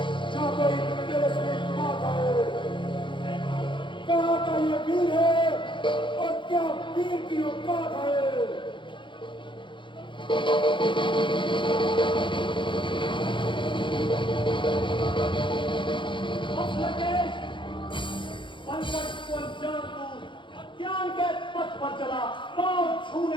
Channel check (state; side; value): late; right; 0.23 ms